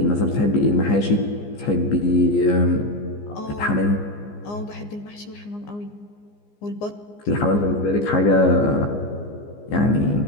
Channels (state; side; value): late; right; 15 ms